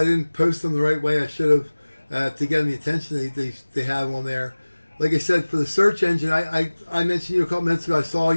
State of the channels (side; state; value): both; inverted; correlation -1.00